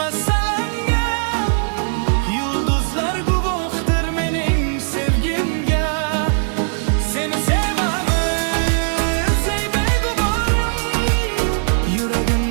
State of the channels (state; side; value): silent; left; 66 dB below the other